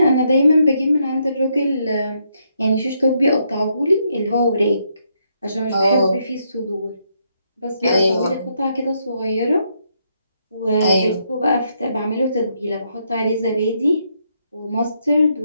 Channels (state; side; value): inverted; both; correlation -0.76